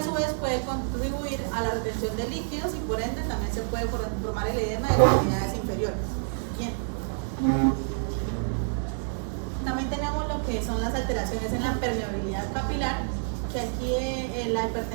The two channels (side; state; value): left; silent; 59 dB below the other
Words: su vez puede contribuir a la retención de líquidos y por ende también se puede formar el edema de las extremidades inferiores. Bien. También tenemos lo que son las alteraciones en la permeabilidad capilar, que aquí la